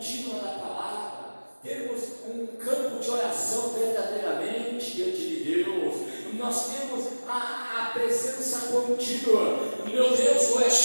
da palavra, termos um campo de oração verdadeiramente diante de Deus, nós temos a presença contínua, meu Deus, o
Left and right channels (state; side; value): inverted; both; correlation -1.00